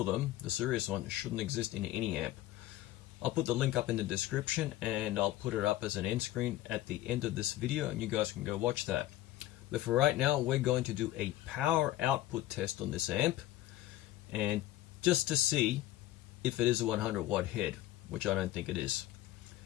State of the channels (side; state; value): right; quieter; 15.0 dB